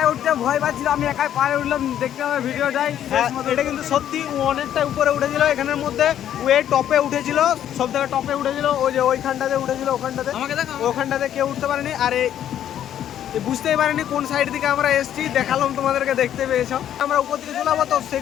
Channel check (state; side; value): quieter; right; 10.6 dB